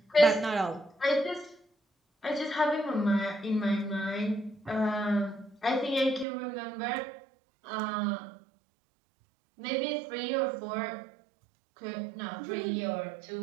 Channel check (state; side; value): drops out; left; at 6.2 s